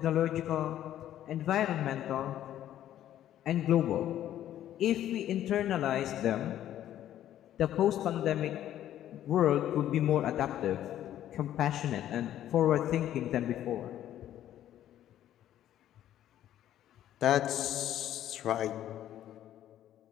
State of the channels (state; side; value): quieter; right; 11.9 dB